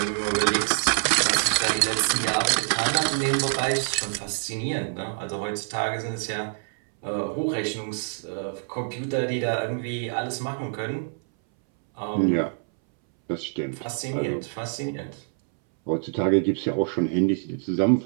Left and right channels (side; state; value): left; silent; 61 dB below the other